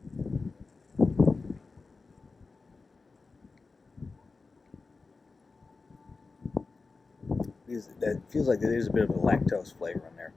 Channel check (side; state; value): right; quieter; 4.1 dB